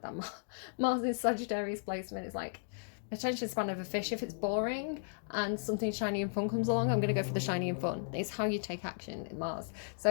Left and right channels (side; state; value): right; silent; digital silence